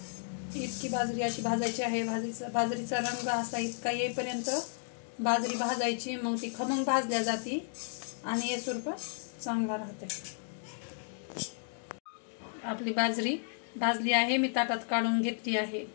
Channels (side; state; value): right; silent; digital silence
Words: इतकी बाजरी अशी भाजायची आहे। बाजरीचा रंग असा इतका येईपर्यंत बाजरी भाजायची, मग ती खमंग भाजल्या जाते आणि एसूर पण चांगला राहते। आपली बाजरी भाजली आहे, मी ताटात काढून घेतली आहे।